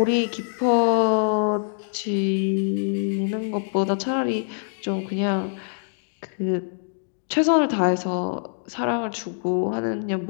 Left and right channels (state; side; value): silent; right; digital silence